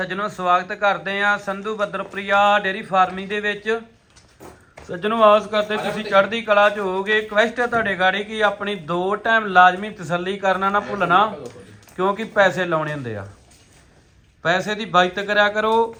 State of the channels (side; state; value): both; identical; correlation 1.00